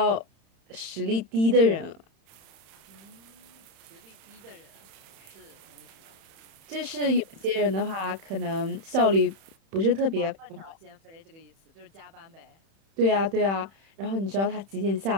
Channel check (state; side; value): late; left; 31 ms